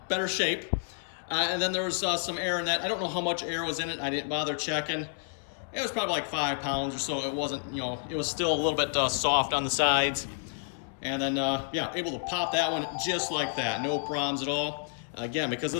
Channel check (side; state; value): right; silent; digital silence